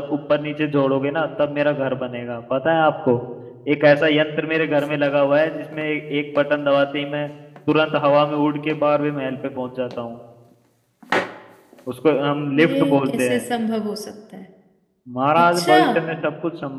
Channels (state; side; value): identical; both; correlation 1.00